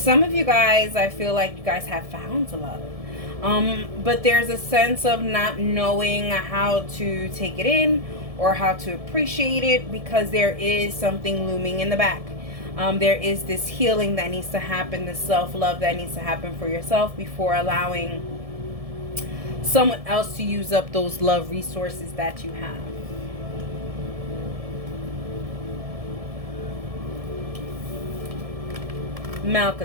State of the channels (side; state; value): left; late; 1.7 ms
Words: of you guys, I feel like you guys have found love. But there's a sense of not knowing how to take it in or how to appreciate it, because there is something looming in the back. There is this healing that needs to happen, this self-love that needs to happen for yourself before allowing someone else to use up those love resources that you have.